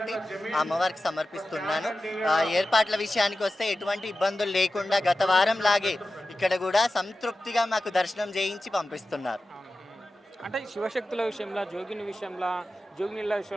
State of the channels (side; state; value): both; normal; correlation 0.94